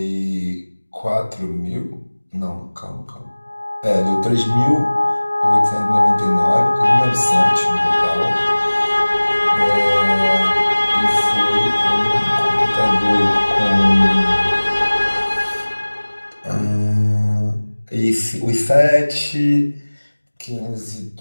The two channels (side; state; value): both; inverted; correlation -1.00